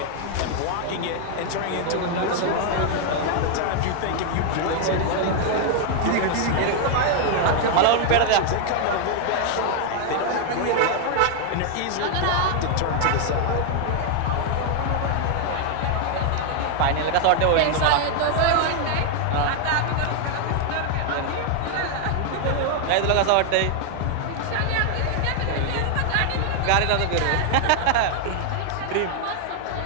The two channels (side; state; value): both; different; correlation 0.00